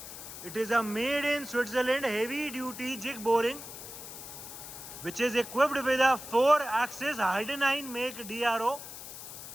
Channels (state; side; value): noise; left; hiss, 11 dB below the sound